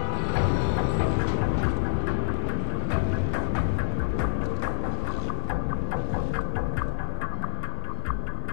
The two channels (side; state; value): right; silent; digital silence